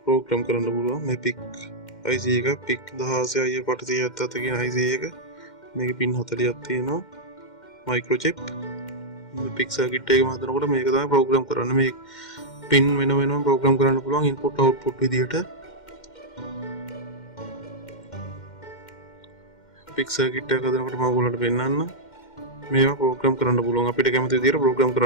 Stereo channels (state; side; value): late; right; 2.1 ms